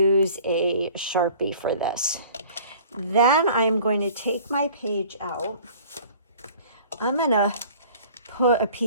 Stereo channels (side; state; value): both; inverted; correlation -0.49